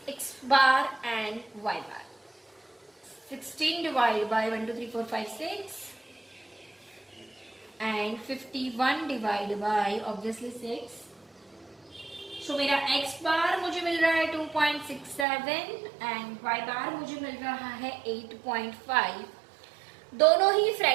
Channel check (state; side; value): drops out; left; at 15.2 s